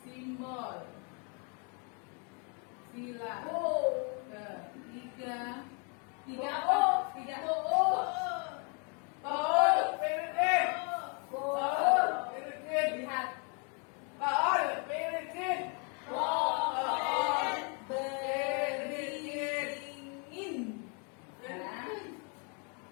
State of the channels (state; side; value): quieter; right; 36.7 dB